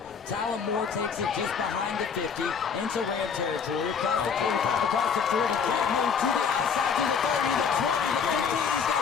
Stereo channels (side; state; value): right; quieter; 6.4 dB